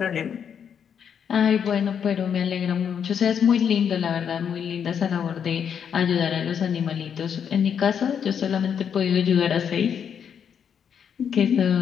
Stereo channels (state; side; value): quieter; right; 7.8 dB